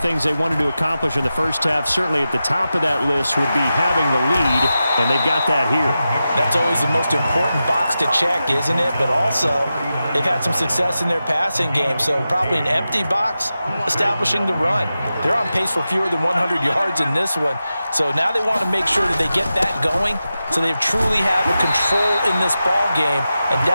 they wanted to accomplish in the first half, certainly at the top of that list would be having the lead, and they've got that here. That's always the most important box to check, isn't it? But also, they've had some success in their passing game, so probably an empty box establishing the run. They're on pace for fewer than 100 yards in this one, so now they want to make sure that they get that going so they truly have a control in this ball game, and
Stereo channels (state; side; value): inverted; both; correlation -0.92